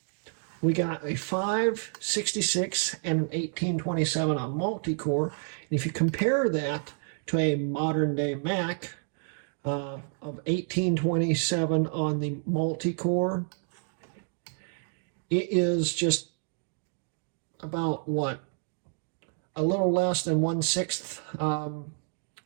we got a 566 and an 1827 on multi-core. And if you compare that to a modern day Mac of 1827 on the multi-core, it is just about what? A little less than 1/6,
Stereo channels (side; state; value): left; silent; 57 dB below the other